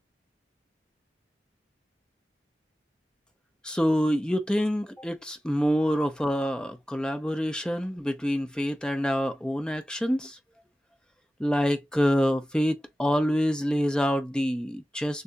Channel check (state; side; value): normal; both; correlation 0.95